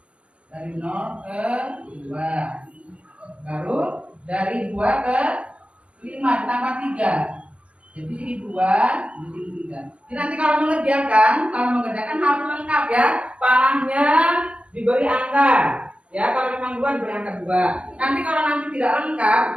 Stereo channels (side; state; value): left; late; 0.061 ms